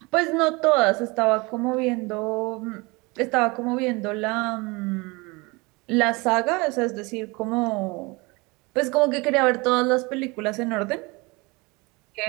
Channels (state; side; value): quieter; left; 25.6 dB